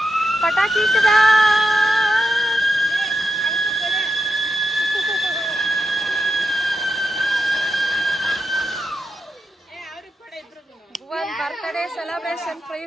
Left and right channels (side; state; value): both; normal; correlation 0.87